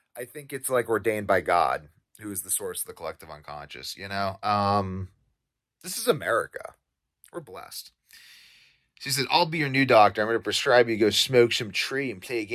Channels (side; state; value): both; identical; correlation 1.00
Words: I think it's like ordained by God, who is the source of the collective unconscious, you know? This is America. We're blessed. She said, I'll be your new doctor. I'm going to prescribe you to go smoke some tree and play a